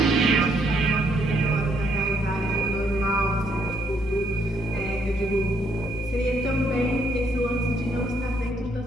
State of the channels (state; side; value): normal; both; correlation 0.71